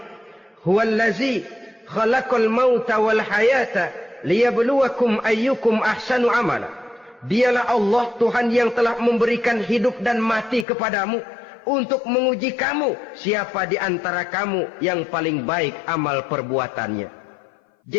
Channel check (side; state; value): right; drops out; at 10.7 s